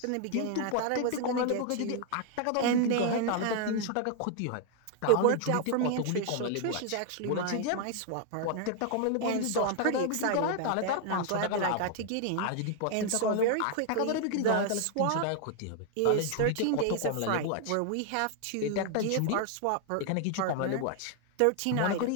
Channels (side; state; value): both; different; correlation 0.00